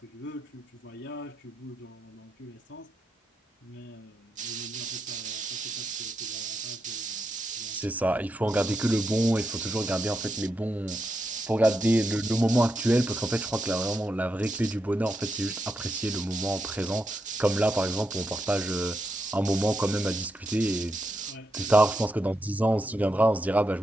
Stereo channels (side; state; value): both; normal; correlation 0.84